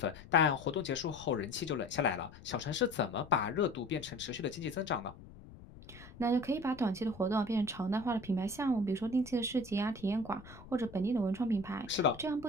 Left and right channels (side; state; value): left; noise; rumble, 18 dB below the sound